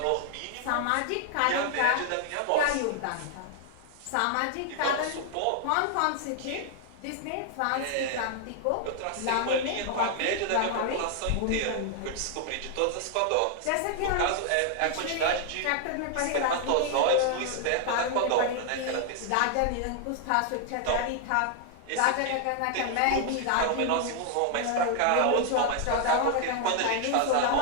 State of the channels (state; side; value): different; both; correlation 0.00